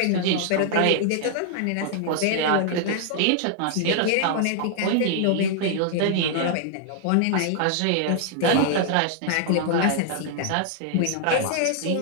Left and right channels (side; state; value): both; different; correlation 0.00